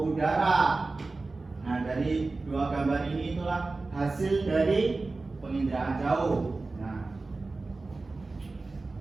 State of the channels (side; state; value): left; quieter; 3.5 dB